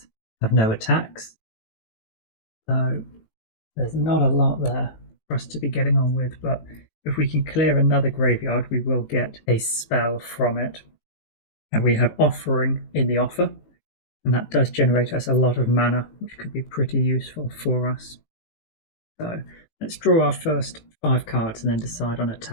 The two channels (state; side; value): late; right; 18 ms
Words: have no attacks. So there's not a lot there for us to be getting on with, but if we can clear another graveyard, we will get a spell from it. And we have Offering in the offer, and that does generate us a lot of mana, which could be pretty useful for us. So let's draw our first 5 cards and then decide on a